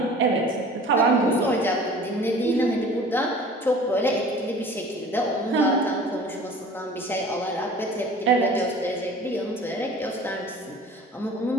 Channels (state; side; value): normal; both; correlation 0.45